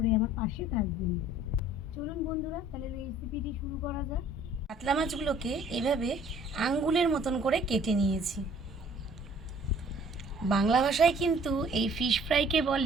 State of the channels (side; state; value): both; normal; correlation 0.55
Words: আমার পাশে থাকবেন। চলুন বন্ধুরা, তাহলে রেসিপিটি শুরু করা যাক। কাতলা মাছগুলোকে এভাবে আঙ্গুলের মতন করে কেটে নিয়েছি। বাংলা ভাষায় কিন্তু এই ফিশ ফ্রাইকে